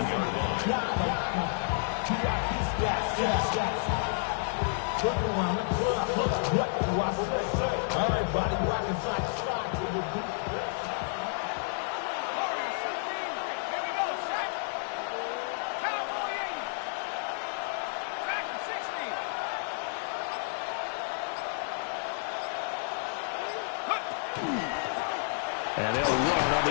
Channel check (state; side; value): silent; right; digital silence